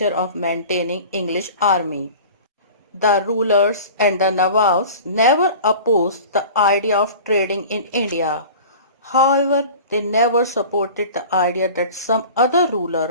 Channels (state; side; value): inverted; both; correlation -0.40